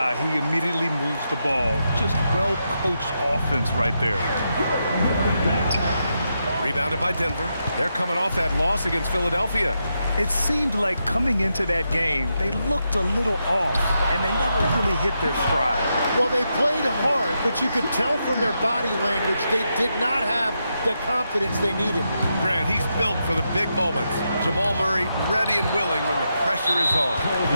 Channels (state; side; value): inverted; both; correlation -0.84